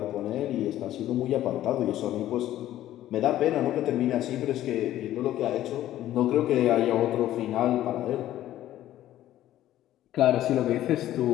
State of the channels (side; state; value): right; quieter; 13.3 dB